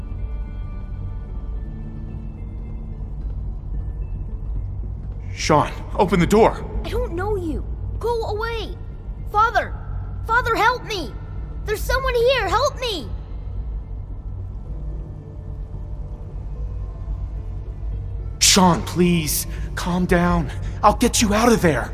Sean, open the door! I don't know you. Go away. Father! Father, help me! There's someone here, help me! Sean, please, calm down. I'll get you out of there.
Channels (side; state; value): both; identical; correlation 1.00